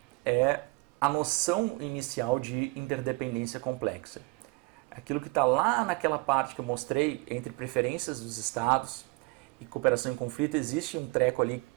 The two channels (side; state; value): left; quieter; 26.8 dB